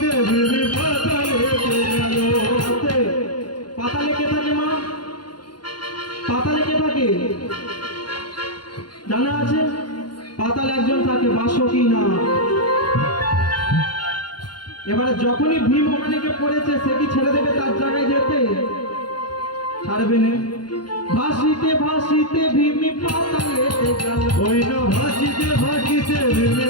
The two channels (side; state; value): right; late; 0.71 ms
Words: ভীম পাতালেতে গেল। আস্তে। পাতালে কে থাকে মা? পাতালে কে থাকে জানা আছে? পাতালে একজন থাকে, বাসকি না। এবারে যখনই ভীম ওখানে কে পড়েছে, সে কি ছেড়ে দেবে তার জায়গায় যেতে? ছাড়বে না। ভাসিতে ভাসিতে ভীম পাতালেতে গেল। ওই না ভাসিতে ভাসিতে ভীম